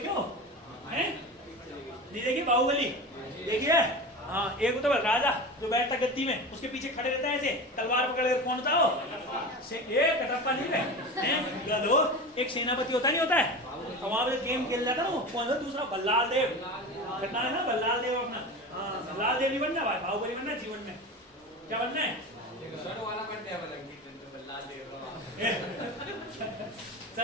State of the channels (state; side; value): normal; both; correlation 0.29